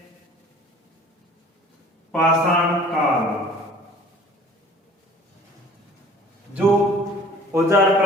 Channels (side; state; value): both; normal; correlation 0.48